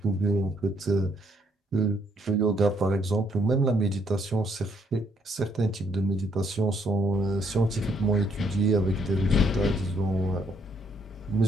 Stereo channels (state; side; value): normal; both; correlation 0.70